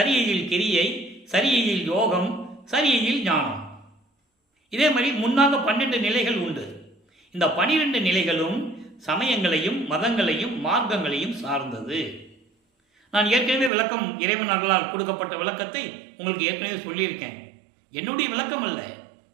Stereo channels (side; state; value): left; drops out; at 13.7 s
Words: கிரியை, சரியையில் யோகம், சரியையில் ஞானம். இதே மாதிரி முன்னாக 12 நிலைகள் உண்டு. இந்த 12 நிலைகளும் சமயங்களையும் மதங்களையும் மார்க்கங்களையும் சார்ந்தது. நான் ஏற்கனவே விளக்கம் இறைவன் அருளால் கொடுக்கப்பட்ட விளக்கத்தை உங்களுக்கு ஏற்கனவே சொல்லியிருக்கேன். என்னுடைய விளக்கம் அல்ல,